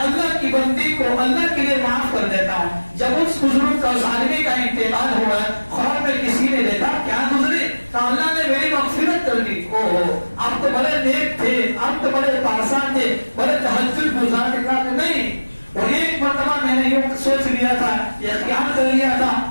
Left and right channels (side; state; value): both; inverted; correlation -1.00